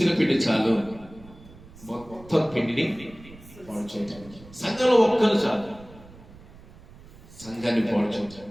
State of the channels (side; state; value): right; noise; rumble, 21 dB below the sound